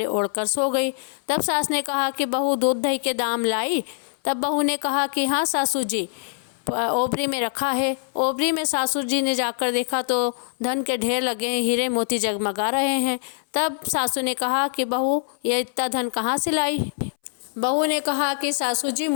ओढ़कर सो गई। तब सास ने कहा कि बहू दूध दही के दाम लाई? तब बहू ने कहा कि हाँ सासू जी, ओबरी में रखा है। ओबरी में सासू जी ने जाकर देखा तो धन के ढेर लगे हैं, हीरे मोती जगमगा रहे हैं। तब सासू ने कहा कि बहू ये इतना धन कहाँ से लाई? बहू ने कहा कि सासू जी,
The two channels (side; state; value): right; silent; 63 dB below the other